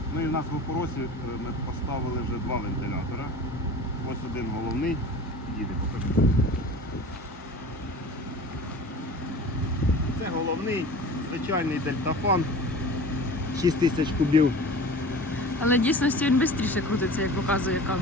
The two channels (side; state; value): both; normal; correlation 0.38